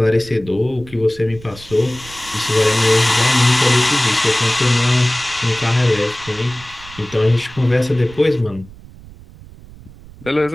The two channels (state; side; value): noise; right; rumble, 20 dB below the sound